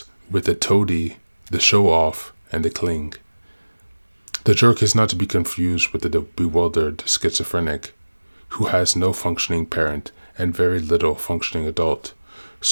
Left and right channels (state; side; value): inverted; both; correlation -1.00